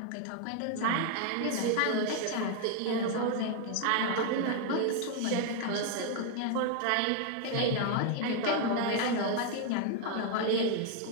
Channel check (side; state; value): both; different; correlation 0.00